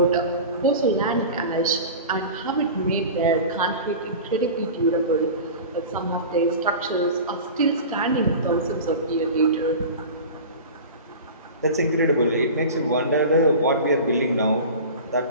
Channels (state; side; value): inverted; both; correlation -0.33